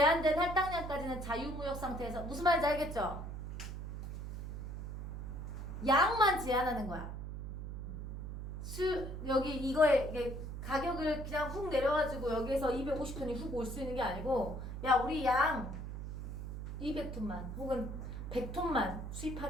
할당량까지는 자유무역 상태에서. 무슨 말인지 알겠죠? 양만 제한하는 거야. 여기 이거에 가격을 그냥 훅 내려가지고 여기에서 250톤이 훅 올 수 있는 게 아니고, 야, 우리 양 200톤만 혹은 100톤만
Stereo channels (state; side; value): noise; right; hum, 7 dB below the sound